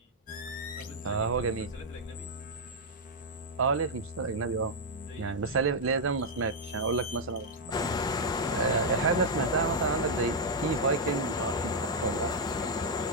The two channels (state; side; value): normal; both; correlation -0.02